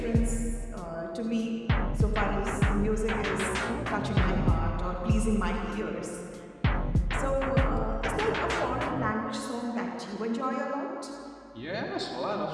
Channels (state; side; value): identical; both; correlation 1.00